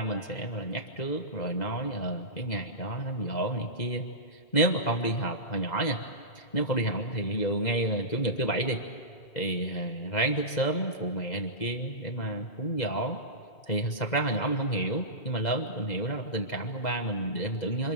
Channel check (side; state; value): right; late; 2.0 ms